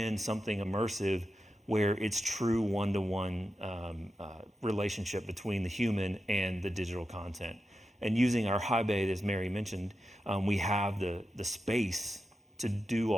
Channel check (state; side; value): normal; both; correlation 0.90